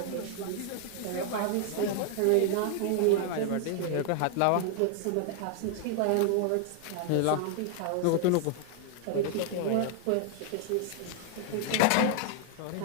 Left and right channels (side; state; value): both; different; correlation 0.00